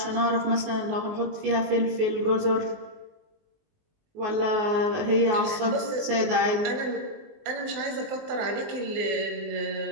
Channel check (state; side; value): late; left; 19 ms